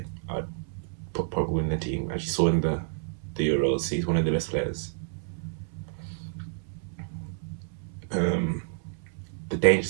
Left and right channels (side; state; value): left; silent; 58 dB below the other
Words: I'd put Pogba in the team. As you saw in the Euros, he's one of the best players. The